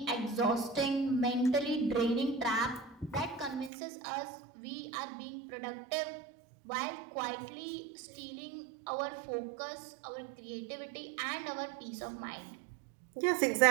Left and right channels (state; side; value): drops out; left; at 3.7 s